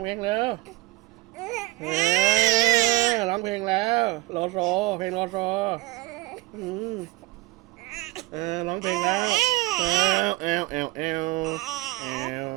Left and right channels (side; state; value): left; quieter; 20.6 dB